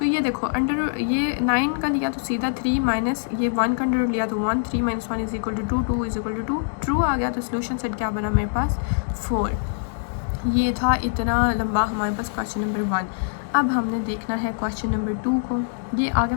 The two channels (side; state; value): right; silent; digital silence